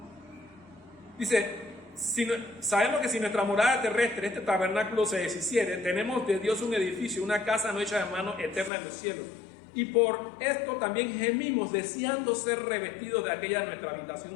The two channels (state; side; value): drops out; right; at 8.7 s